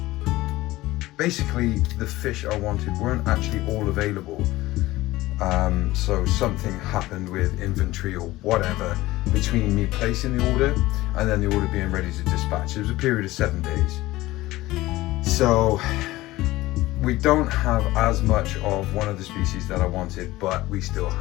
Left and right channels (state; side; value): quieter; right; 17.9 dB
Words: basically the fish I wanted weren't actually all available. So something happened with inventory or whatever between me placing the order and then the order being ready to dispatch. It was a period of 7 days. So we don't have as much of one of the species that I wanted, but we still